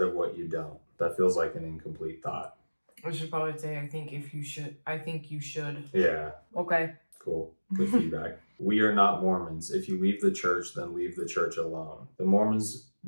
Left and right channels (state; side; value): inverted; both; correlation -1.00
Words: of what you don't, that feels like an incomplete thought. I should probably say, I think you should. Yeah. Okay. Cool. Good feedback. We are not Mormons. If you leave the church, then leave the church alone. The Mormons